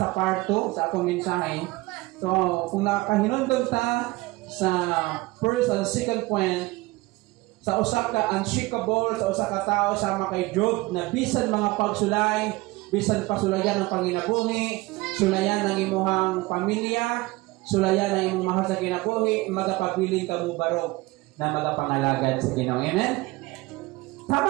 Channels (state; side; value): quieter; left; 21.6 dB